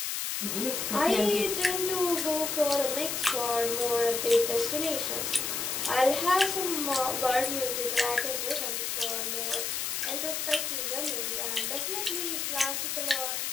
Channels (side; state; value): left; noise; hiss, 1 dB below the sound